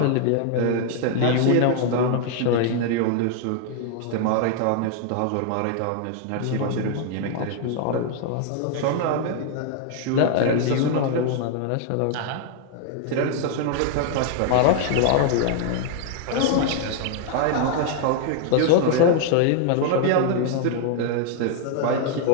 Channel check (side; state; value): both; different; correlation 0.00